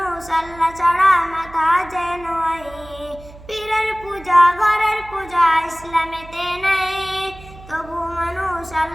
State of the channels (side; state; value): right; noise; hum, 19 dB below the sound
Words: আল্লাহ ছাড়া মাথা যেন আই। পীরের পূজা ঘরের পূজা ইসলামেতে নাই, তবু মানুষ